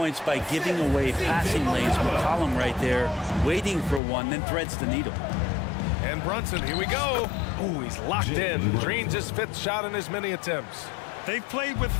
by giving away passing lanes. McCollum right there, waiting for one, then threads the needle. And Brunson, here we go. Ooh, he's locked in. Drains his 5th shot in as many attempts. They've played with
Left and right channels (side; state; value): right; drops out; at 4.0 s